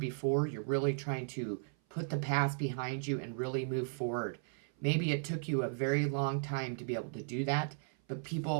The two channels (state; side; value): silent; left; 54 dB below the other